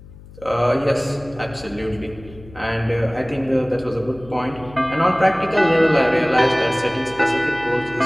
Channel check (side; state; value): left; noise; hum, 20 dB below the sound